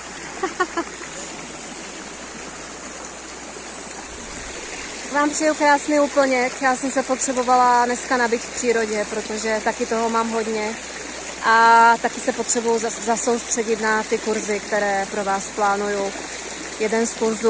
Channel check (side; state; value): both; identical; correlation 1.00